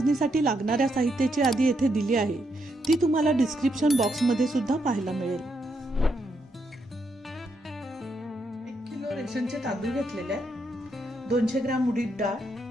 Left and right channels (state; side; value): normal; both; correlation 0.79